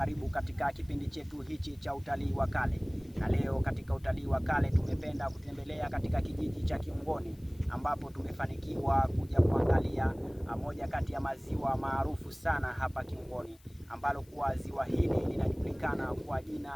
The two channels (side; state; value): left; noise; hiss, 29 dB below the sound